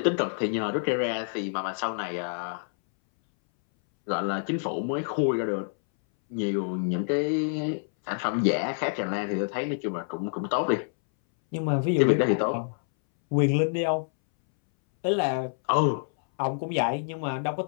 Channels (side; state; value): right; silent; 60 dB below the other